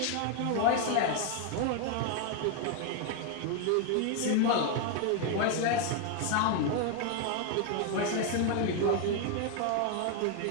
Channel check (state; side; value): different; both; correlation 0.01